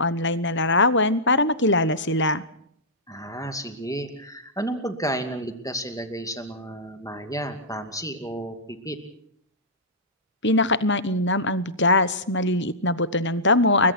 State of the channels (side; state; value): both; normal; correlation -0.15